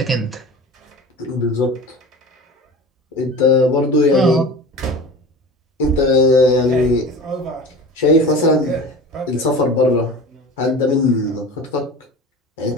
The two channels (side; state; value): both; normal; correlation 0.35